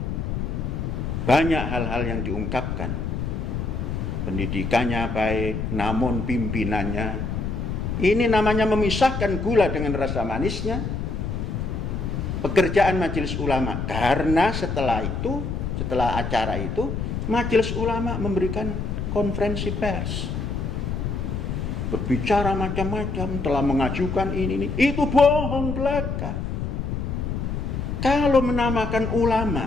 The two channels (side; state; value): left; noise; rumble, 3 dB below the sound